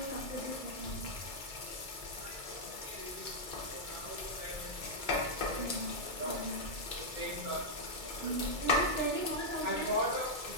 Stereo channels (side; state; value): left; late; 2.3 ms